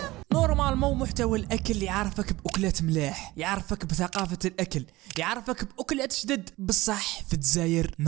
نورمالمون محتوى الاكل يعرفك باكلات ملاح، يعرفك بثقافه الاكل، يعرفك باكلات جدد. بصح في الجزائر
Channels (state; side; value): quieter; left; 19.2 dB